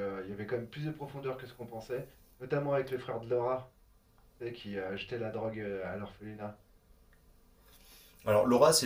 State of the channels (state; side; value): identical; both; correlation 1.00